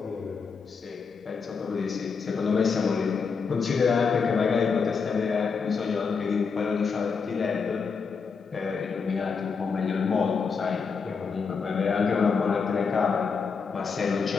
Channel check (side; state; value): right; quieter; 5.4 dB